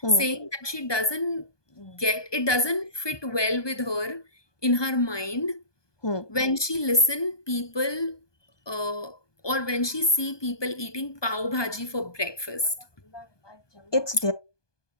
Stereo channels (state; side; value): late; right; 1.2 ms